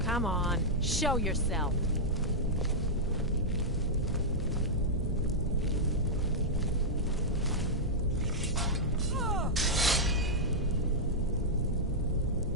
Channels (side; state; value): both; normal; correlation -0.08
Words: Come on, show yourself.